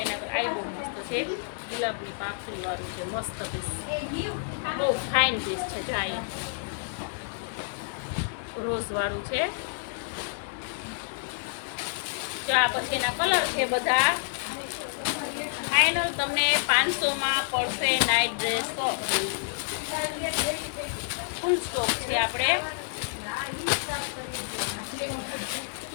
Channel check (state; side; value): silent; right; digital silence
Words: એના આ બહુ મસ્ત છે. ગુલાબની પાંખડી વાળું છે, મસ્ત પીસ, બહુ ફાઇન પીસ છે. જાય રોઝ વાળું છે. જો આ પછી એના કલર છે બધા. ફાઇનલ તમને 500માં પડશે નાઇટ ડ્રેસ. ફૂલ સ્ટોક છે. આપણે